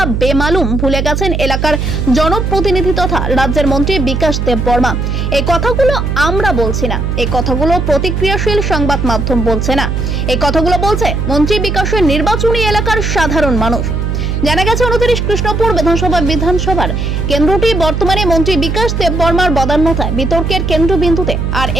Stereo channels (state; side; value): noise; right; hum, 1 dB below the sound